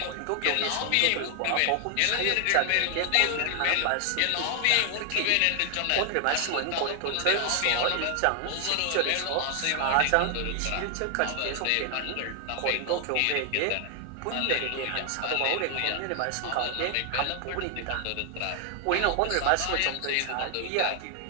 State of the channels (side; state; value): both; different; correlation 0.00